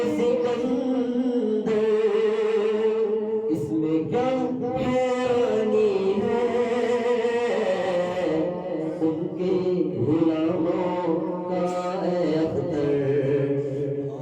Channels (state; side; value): identical; both; correlation 1.00